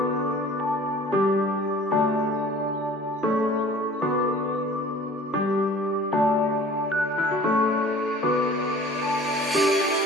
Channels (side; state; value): both; normal; correlation 0.47